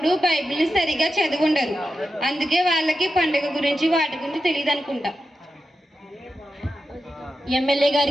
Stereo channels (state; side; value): normal; both; correlation 0.90